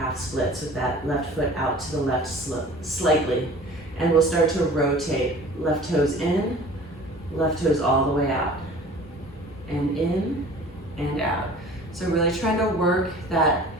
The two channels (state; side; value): normal; both; correlation 0.45